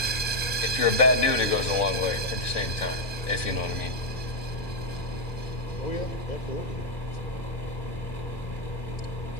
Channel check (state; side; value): late; right; 2.4 ms